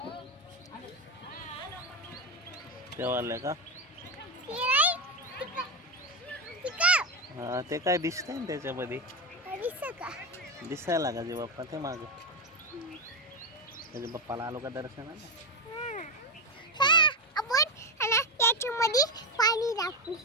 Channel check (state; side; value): normal; both; correlation 0.12